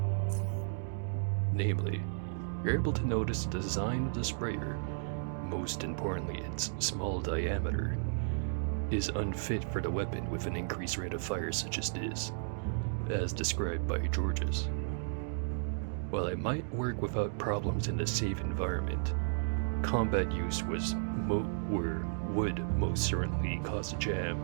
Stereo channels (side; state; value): left; silent; digital silence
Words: Namely, you're able to notice the design of the sprayer, most importantly its small diameter, is unfit for the weapon with an increased rate of fire such as this, as described by Georges. While it might work without problems in a safe environment, combat use would most certainly cause a jam